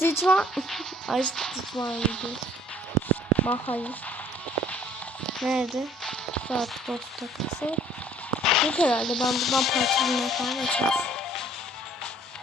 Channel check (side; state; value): both; normal; correlation 0.57